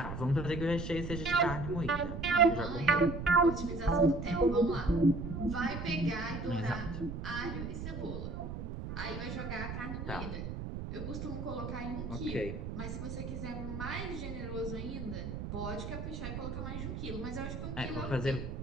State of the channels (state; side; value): noise; right; rumble, 6 dB below the sound